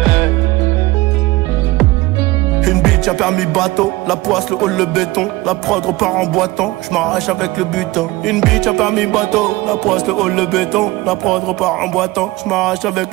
Une bitch, un permis bateau. La poisse, le hall, le béton. La prod repart en boitant, je m'arrache avec le butin. Une bitch, un permis bateau. La poisse, le hall, le béton. La prod repart en boitant, je m'arrache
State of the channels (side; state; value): left; quieter; 20.2 dB